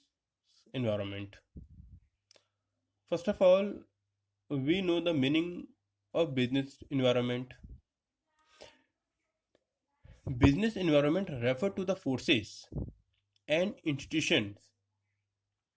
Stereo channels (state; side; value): identical; both; correlation 1.00